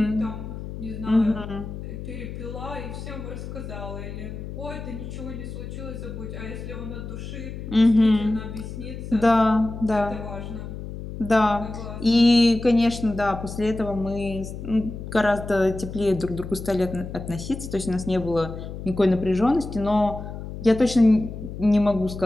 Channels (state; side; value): noise; left; hum, 9 dB below the sound